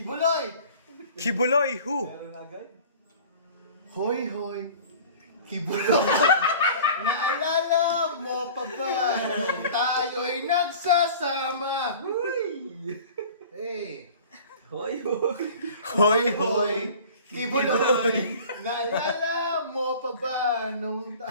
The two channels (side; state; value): both; inverted; correlation -0.43